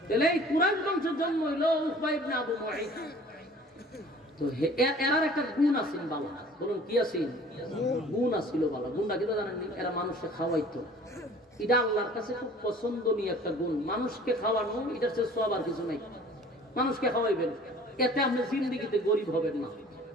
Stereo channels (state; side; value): normal; both; correlation 0.48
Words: এই কুরাইশ বংশের জন্ম হইলো উকবা ইবনে আবু মুঈদ তো এরার একটা গুণ আছে বাবা বলুন কি আছে গুণ আছিল বাবা গুণটা কি জানেন নি এরা মানুষকে খাওয়াইতো এটা আল্লাহর কাছে খুব পছন্দনীয় একটা গুণ মানুষকে খাওয়ানো এটার চেয়ে সওয়াব আর কিছু নাই মানুষকে খাওয়াইবেন এতে আপনি জিন্দেগিতে গরিব হবেন না